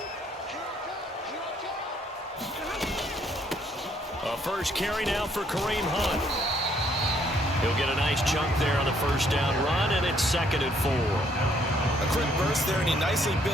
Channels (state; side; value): normal; both; correlation 0.67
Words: First carry now for Kareem Hunt. He'll get a nice chunk there on the first down run, and it's 2nd and 4. A quick burst there, and he nicely